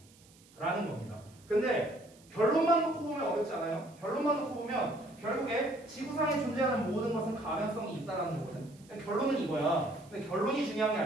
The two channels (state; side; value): noise; right; hiss, 27 dB below the sound